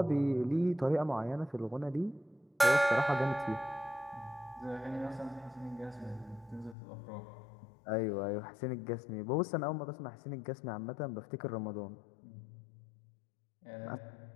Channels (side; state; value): right; drops out; at 6.8 s